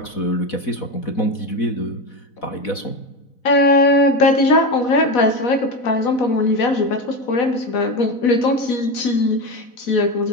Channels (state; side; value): late; right; 4.1 ms